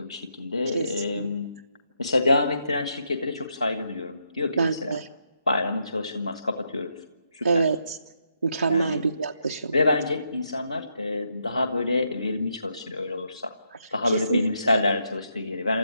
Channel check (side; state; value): both; inverted; correlation -0.79